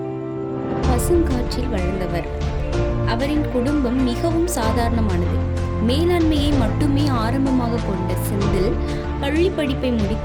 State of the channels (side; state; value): both; identical; correlation 1.00